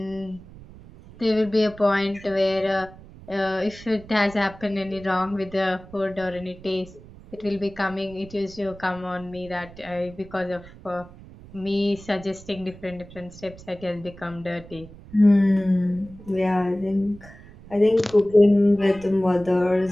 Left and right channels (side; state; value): right; noise; rumble, 19 dB below the sound